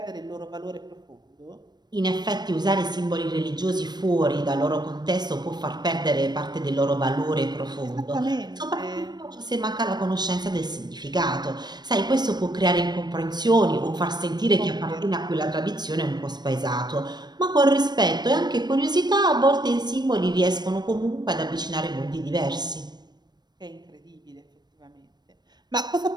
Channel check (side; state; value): left; late; 0.20 ms